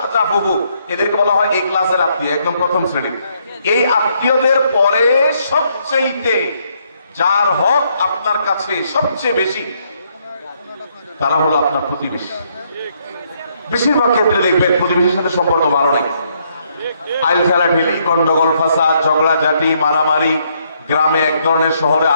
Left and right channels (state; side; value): inverted; both; correlation -0.72